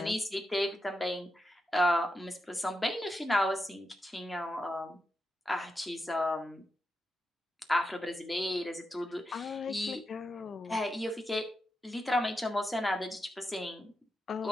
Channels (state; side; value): normal; both; correlation 0.88